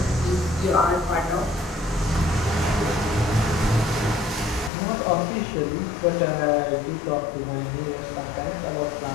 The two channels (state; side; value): drops out; right; at 4.7 s